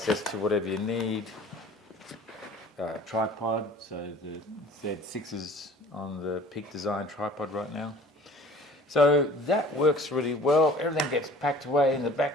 to whatever you need. Tripod, so the Z6 is on the Peak Design tripod right now. So that works really well. Everything gets packed away in the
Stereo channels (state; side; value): normal; both; correlation 0.47